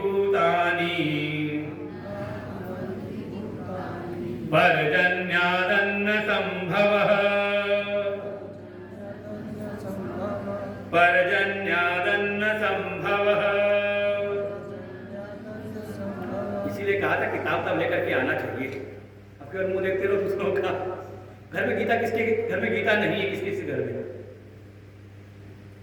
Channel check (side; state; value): both; identical; correlation 1.00